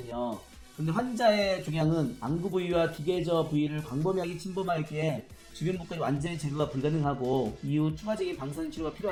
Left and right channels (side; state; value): both; identical; correlation 1.00